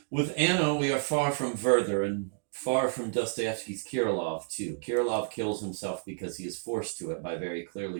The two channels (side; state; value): left; silent; digital silence